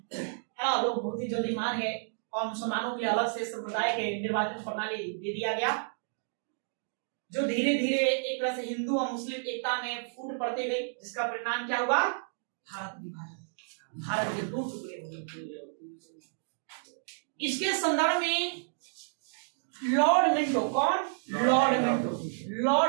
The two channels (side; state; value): left; silent; digital silence